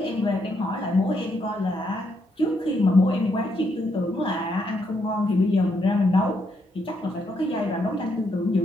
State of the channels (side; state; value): both; normal; correlation 0.76